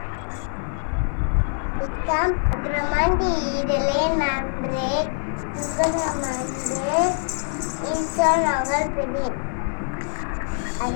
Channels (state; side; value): silent; right; digital silence